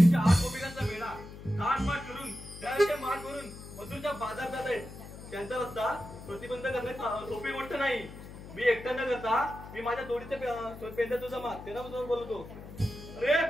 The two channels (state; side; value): noise; left; hum, 14 dB below the sound